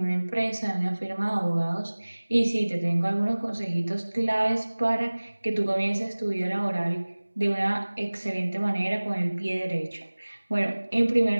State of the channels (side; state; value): both; inverted; correlation -1.00